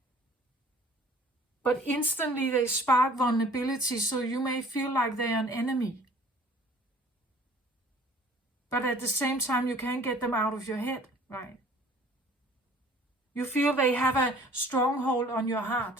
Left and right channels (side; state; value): both; normal; correlation 0.52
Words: But instantly they spark vulnerability, so you may feel like they're an enemy. But at the same time, you can't get them out of your head, right? You feel they have a stronghold on your